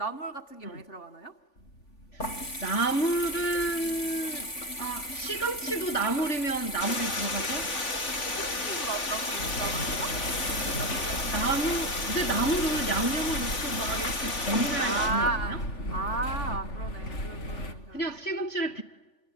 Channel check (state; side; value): late; right; 3.5 ms